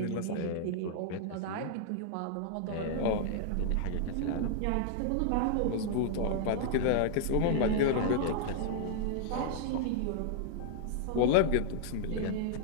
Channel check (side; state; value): both; different; correlation -0.01